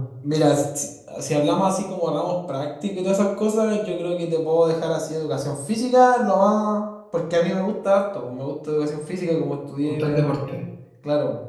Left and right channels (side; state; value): both; identical; correlation 1.00